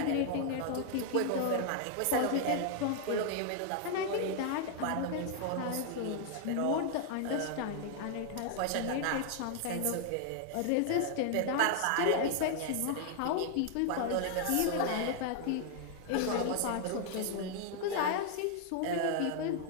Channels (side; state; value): both; different; correlation 0.00